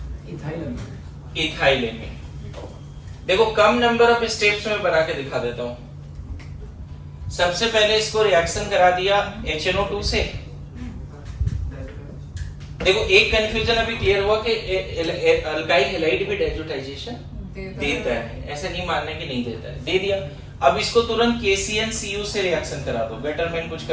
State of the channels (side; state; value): both; identical; correlation 1.00